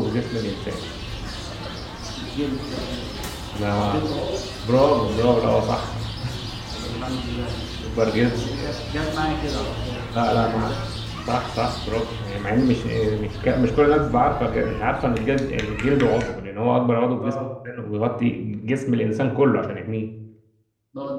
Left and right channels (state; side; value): identical; both; correlation 1.00